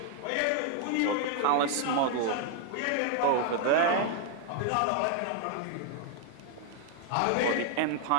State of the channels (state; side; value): different; both; correlation 0.00